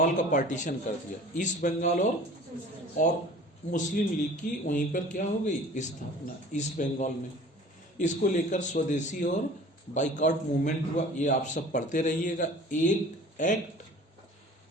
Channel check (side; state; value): both; normal; correlation 0.45